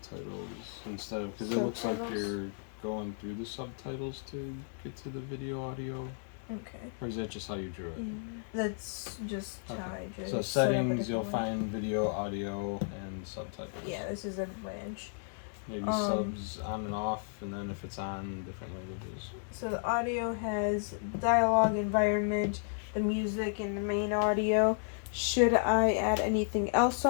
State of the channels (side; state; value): right; silent; digital silence